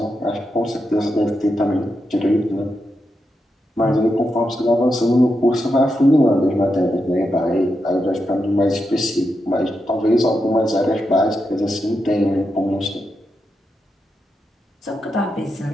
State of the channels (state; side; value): normal; both; correlation 0.86